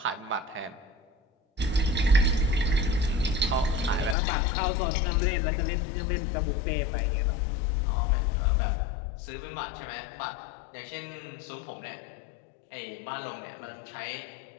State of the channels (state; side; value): drops out; right; at 4.2 s